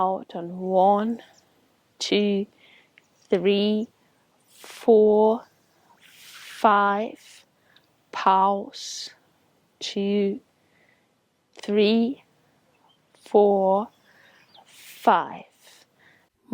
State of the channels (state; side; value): identical; both; correlation 1.00